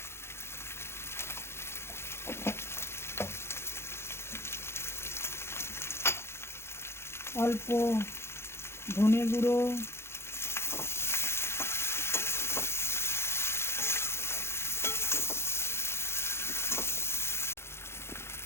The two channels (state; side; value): late; right; 0.12 ms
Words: অল্প ধনে গুঁড়ো,